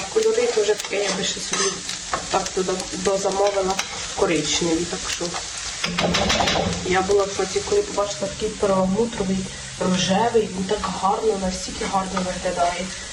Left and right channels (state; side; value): identical; both; correlation 1.00